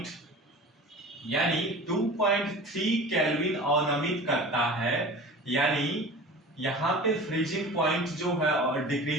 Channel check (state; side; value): normal; both; correlation 0.37